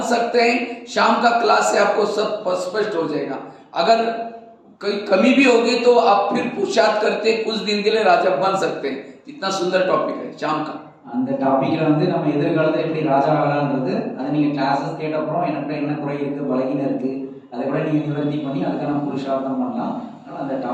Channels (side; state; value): both; identical; correlation 1.00